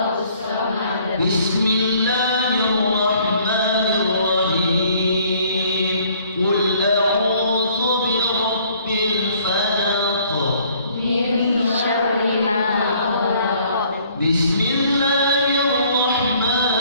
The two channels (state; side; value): inverted; both; correlation -0.60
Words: Bismillahirrahmanirrahim. Qul a'udzu